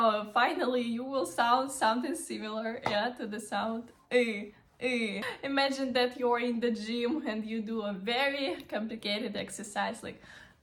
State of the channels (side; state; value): both; identical; correlation 1.00